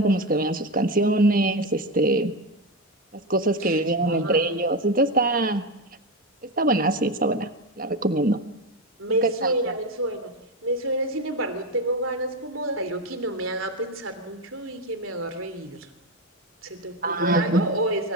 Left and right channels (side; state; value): both; normal; correlation 0.14